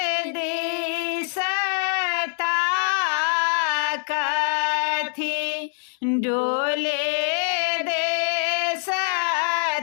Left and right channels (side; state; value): right; silent; digital silence